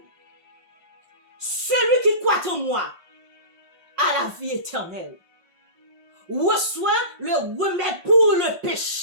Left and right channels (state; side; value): late; left; 1.5 ms